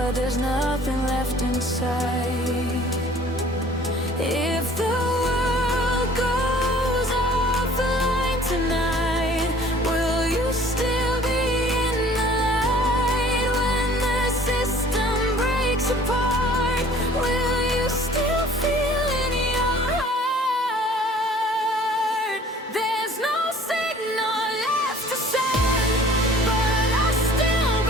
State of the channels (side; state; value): both; normal; correlation 0.51